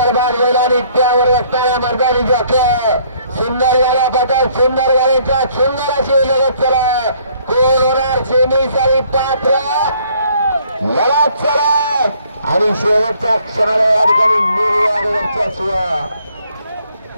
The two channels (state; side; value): inverted; both; correlation -0.63